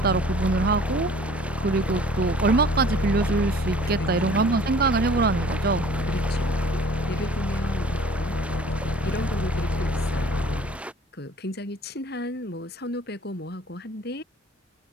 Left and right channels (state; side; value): normal; both; correlation 0.50